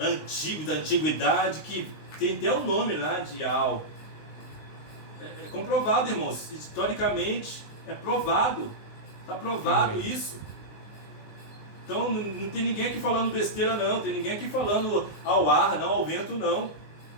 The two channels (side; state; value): right; late; 19 ms